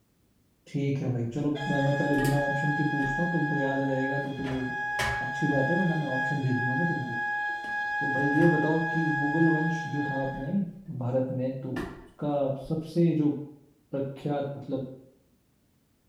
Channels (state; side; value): identical; both; correlation 1.00